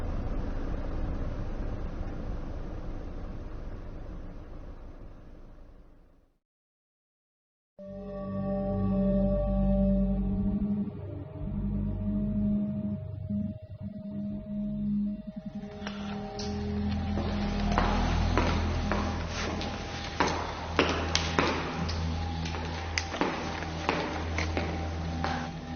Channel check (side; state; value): both; identical; correlation 1.00